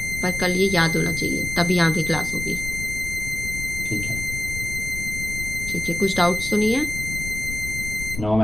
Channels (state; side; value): noise; left; rumble, 8 dB below the sound